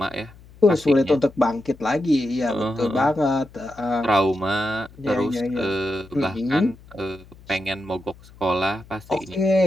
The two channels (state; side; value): noise; left; hum, 23 dB below the sound